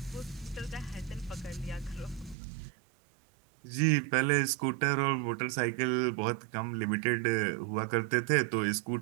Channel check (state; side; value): drops out; left; at 2.4 s